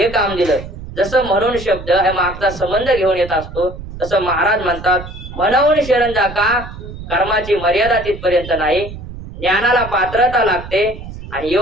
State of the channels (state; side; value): noise; right; rumble, 12 dB below the sound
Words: काम दिलं. जसं म्हणून शब्द हे मागचा संबंध घेऊन येत असतो, तसं महाराज म्हणतात, म्हणून शरण जा का, कर्माची मर्यादा तिथपर्यंत नाही, ज्ञानाला पात्रता लागते आणि